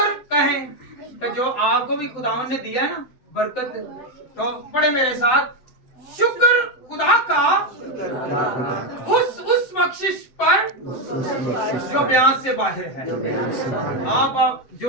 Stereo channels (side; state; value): right; late; 7.9 ms